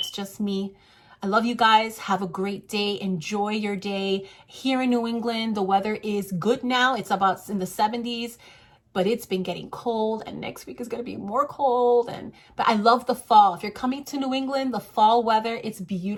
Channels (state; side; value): identical; both; correlation 1.00